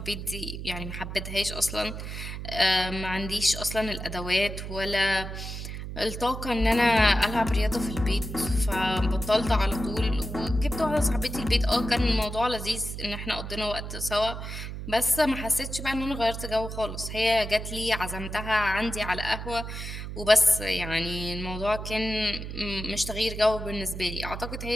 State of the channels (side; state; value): right; noise; hum, 7 dB below the sound